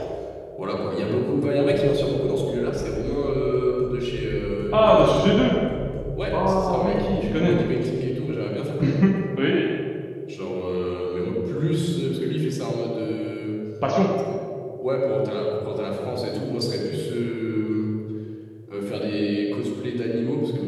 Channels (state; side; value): identical; both; correlation 1.00